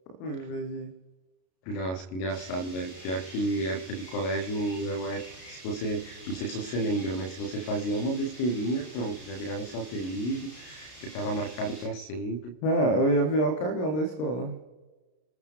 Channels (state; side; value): late; right; 33 ms